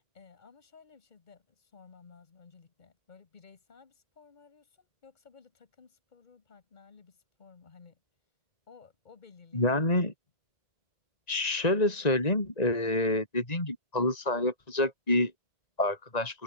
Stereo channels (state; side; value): late; right; 1.9 ms